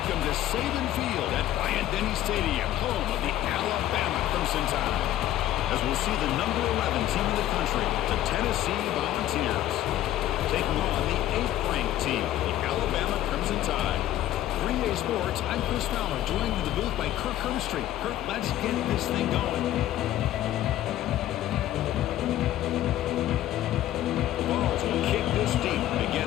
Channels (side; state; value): right; quieter; 13.3 dB